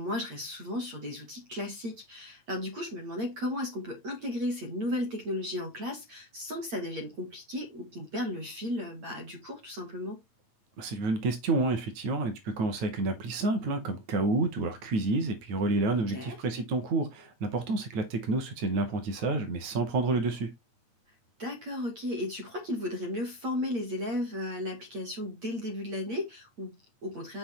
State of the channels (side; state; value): left; late; 8.7 ms